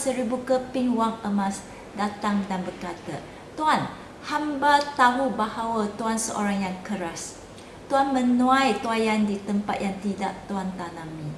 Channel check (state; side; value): identical; both; correlation 1.00